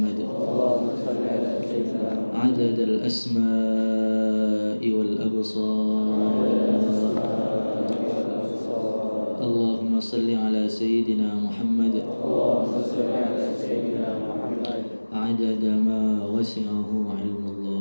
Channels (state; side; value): inverted; both; correlation -1.00